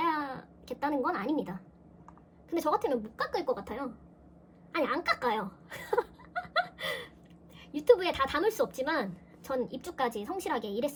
건 아닙니다. 근데 저 같으면 못 깎을 것 같아요. 아니, 안 깎아요. 유튜브에 다 담을 수 없지만 전 입주까지 성실하게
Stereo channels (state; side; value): identical; both; correlation 1.00